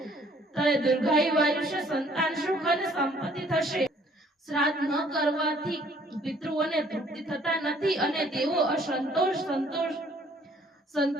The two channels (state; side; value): normal; both; correlation 0.60